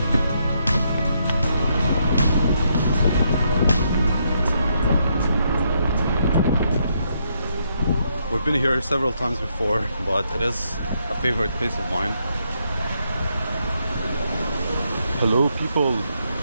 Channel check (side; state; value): both; inverted; correlation -0.76